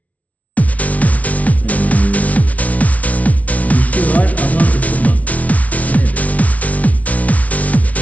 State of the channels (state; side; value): late; right; 0.069 ms